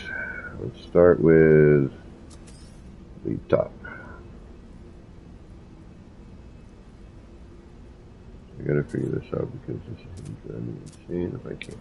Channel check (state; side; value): identical; both; correlation 1.00